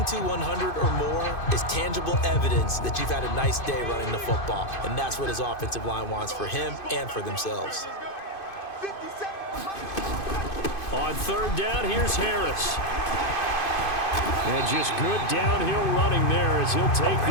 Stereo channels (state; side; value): late; right; 2.5 ms